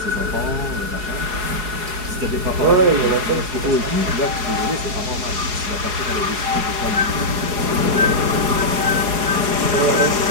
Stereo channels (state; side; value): late; left; 4.8 ms